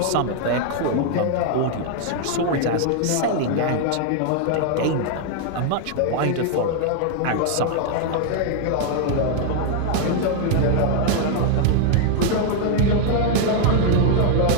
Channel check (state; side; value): different; both; correlation 0.00